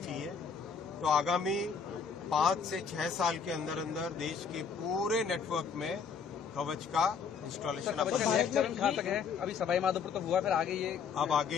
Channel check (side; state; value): right; quieter; 6.2 dB